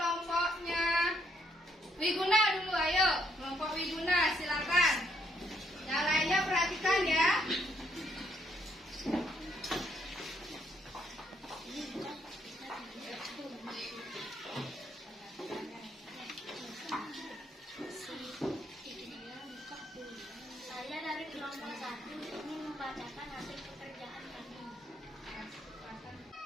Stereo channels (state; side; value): normal; both; correlation 0.73